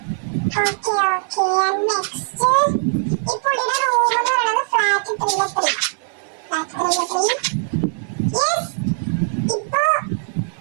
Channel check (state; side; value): silent; left; digital silence